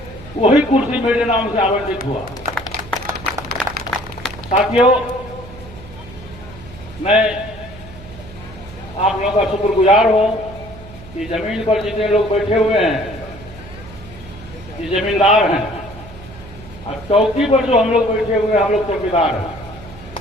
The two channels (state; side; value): noise; right; hum, 17 dB below the sound